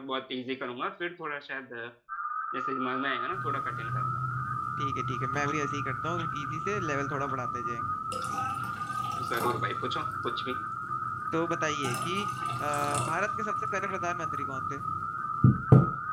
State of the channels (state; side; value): identical; both; correlation 1.00